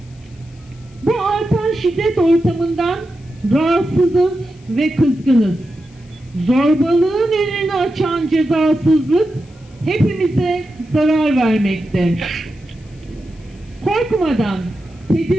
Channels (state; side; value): noise; left; hiss, 30 dB below the sound